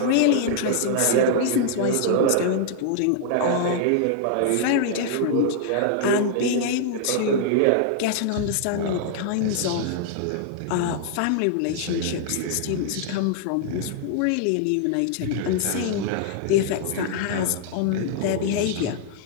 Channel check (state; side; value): different; both; correlation -0.01